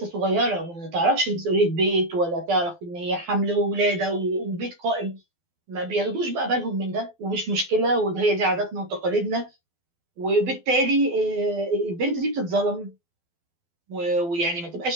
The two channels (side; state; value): left; late; 12 ms